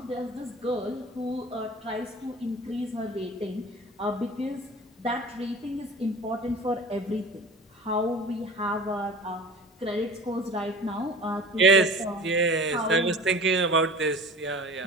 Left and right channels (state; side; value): normal; both; correlation 0.40